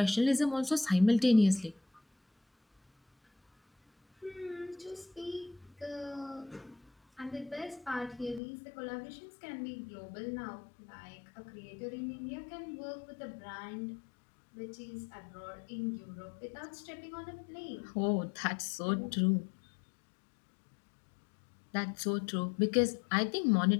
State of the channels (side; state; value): right; drops out; at 8.4 s